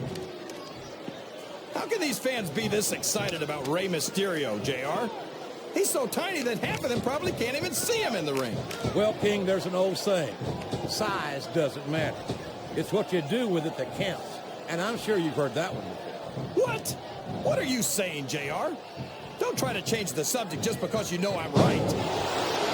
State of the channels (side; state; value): both; identical; correlation 1.00